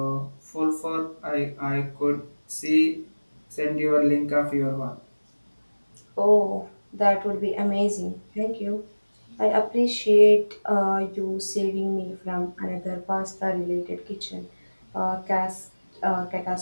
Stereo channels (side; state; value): both; inverted; correlation -1.00